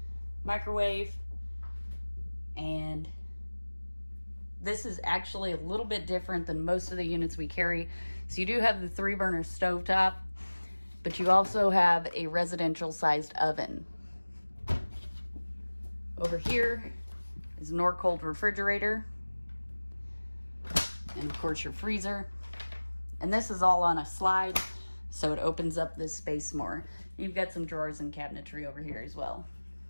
microwave, and this is actually a little bit different than most of the units we carry. So you do have the 3-burner stovetop, but you also have a residential sized oven. Over here is a Norcold refrigerator, and of course your freezer. And this is all on a slide, so it opens up this space more. You've got some drawers and cabinetry over here as well.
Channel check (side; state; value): both; inverted; correlation -1.00